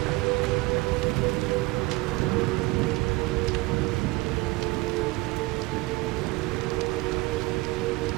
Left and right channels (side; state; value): left; quieter; 22.3 dB